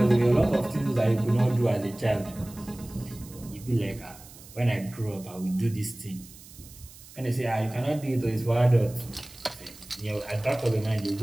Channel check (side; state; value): right; noise; hiss, 20 dB below the sound